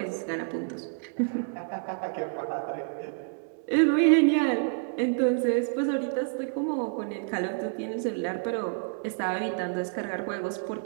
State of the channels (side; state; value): left; silent; digital silence